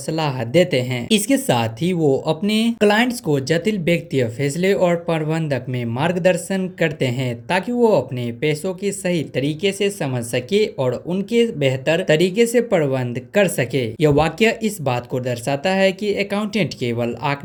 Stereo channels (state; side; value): identical; both; correlation 1.00